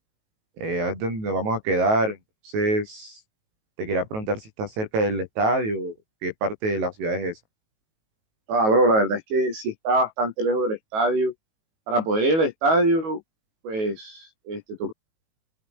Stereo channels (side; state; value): left; late; 19 ms